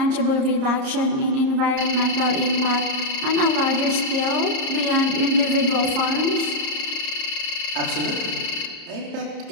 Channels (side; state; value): left; late; 30 ms